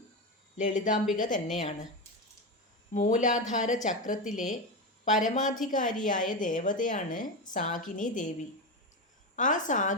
ലളിതാംബിക തന്നെയാണ്. മൂലാധാര ചക്രത്തിലെ പരമാധികാരിയായ ദേവതയാണ് സാകിനി ദേവി. ആ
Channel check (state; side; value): normal; both; correlation 0.16